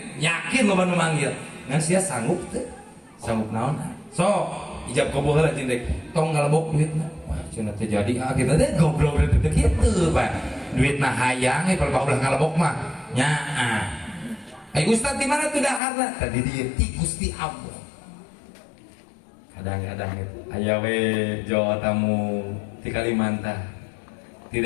Yakin loba nu manggil. Ngan sia sanggup teu? Sanggup naon? So, ijab koboh lah cindek, tong ngalebok duitna. Wah, cina terjadi kita deh goblok gitu gitu, pak. Duitna hayang, kalau ulah ngalebok mah, nyaa. Ustad di mana tuh daharna? Tadi dia ti Gusti Allah. Kadang-kadang itu, ayawe Jawa tamu di Kalimantan, di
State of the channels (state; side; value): drops out; right; at 15.8 s